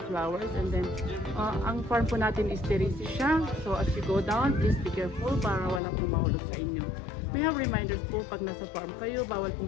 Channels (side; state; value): right; drops out; at 5.8 s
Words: flowers. And then ang farm po natin is terrace siya. So as you go down, please be careful para wala pong mahulog sa inyo. We have reminders po pag nasa farm kayo, bawal